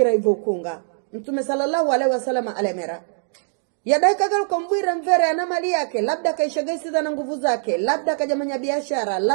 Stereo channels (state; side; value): silent; left; digital silence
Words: hivyo ukunga. Mtume sallallahu alaihi wasallam alemera yadai kagaluka mbwira mvere na mali yake, labda kaishagaisiza na nguvu zake, labda kajamanya biashara,